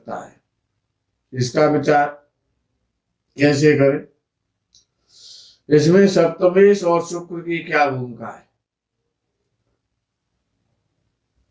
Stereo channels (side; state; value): both; identical; correlation 1.00